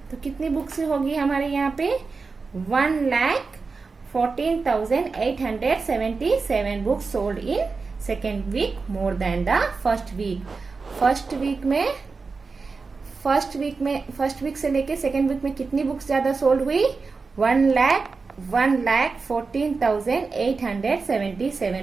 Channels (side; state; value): left; quieter; 4.4 dB